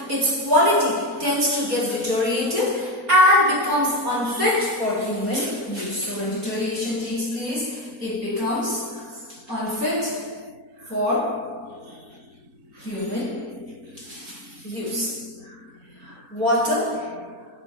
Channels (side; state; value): left; late; 4.3 ms